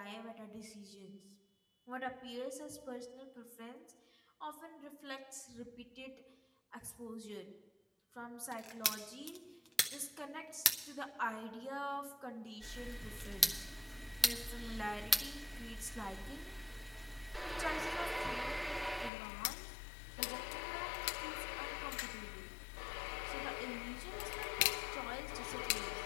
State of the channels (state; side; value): drops out; right; at 19.1 s